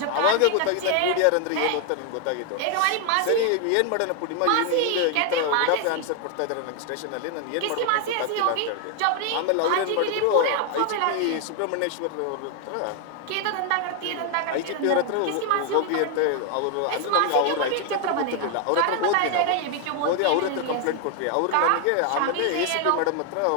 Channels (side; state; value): both; different; correlation 0.00